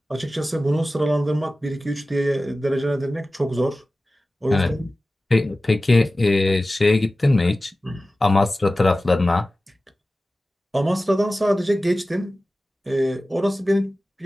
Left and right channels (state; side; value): normal; both; correlation 0.96